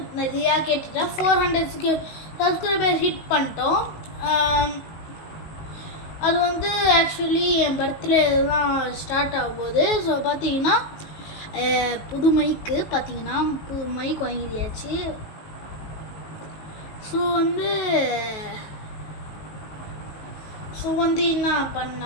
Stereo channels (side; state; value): right; late; 19 ms